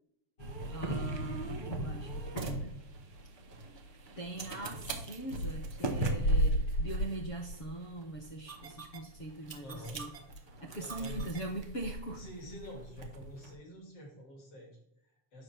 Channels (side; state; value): right; late; 7.0 ms